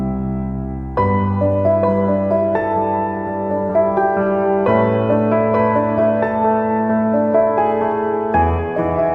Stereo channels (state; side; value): identical; both; correlation 1.00